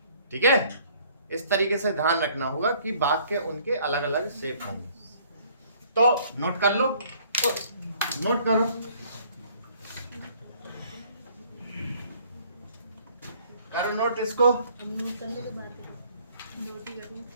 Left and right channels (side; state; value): both; inverted; correlation -0.59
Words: ठीक है, इस तरीके से ध्यान रखना होगा कि वाक्य उनके अलग अलग शेप होंगे। तो नोट कर लो, नोट करो। करो नोट इसको।